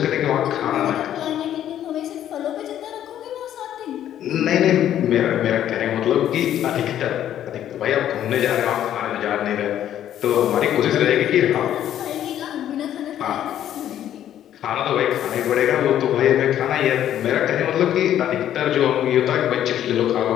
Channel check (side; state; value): right; quieter; 11.1 dB